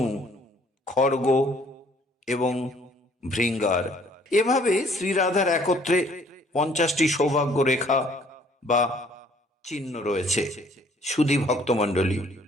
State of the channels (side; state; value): both; normal; correlation 0.60